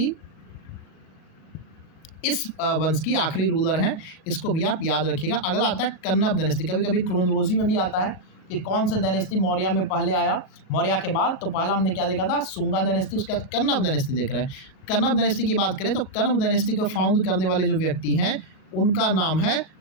इस वंश की आखिरी रूलर हैं, इसको भी आप याद रखिएगा। अगला आता है कन्नब डायनेस्टी। कभी कभी क्रोनोलॉजी में भी आता है कि कौन सा डायनेस्टी मौर्य में पहले आया, मौर्य के बाद। तो पहला हमने क्या देखा था? शुंगा डायनेस्टी, उसके बाद कन्नब डायनेस्टी देख रहे हैं। कन्नब डायनेस्टी की बात करें तो कन्नब डायनेस्टी को फाउंड करने वाले जो व्यक्ति हैं उनका नाम है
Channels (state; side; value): late; right; 37 ms